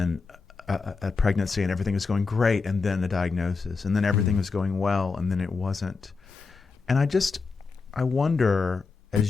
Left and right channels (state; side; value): quieter; right; 4.5 dB